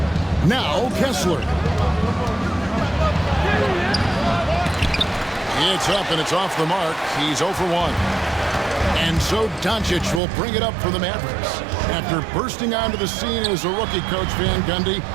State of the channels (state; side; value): drops out; left; at 10.2 s